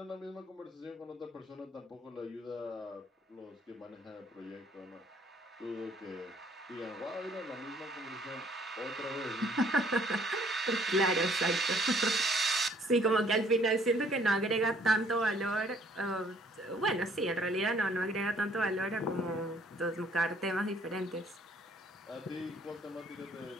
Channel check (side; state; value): both; normal; correlation 0.61